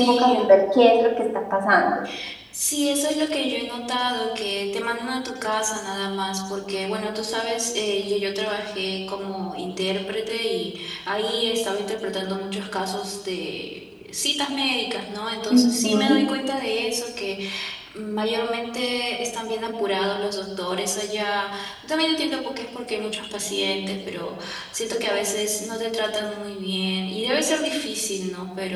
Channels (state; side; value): identical; both; correlation 1.00